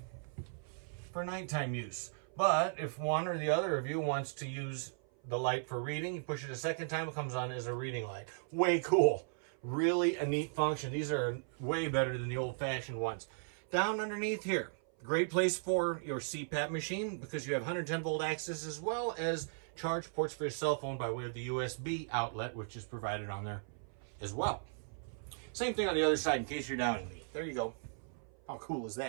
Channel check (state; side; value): silent; left; 53 dB below the other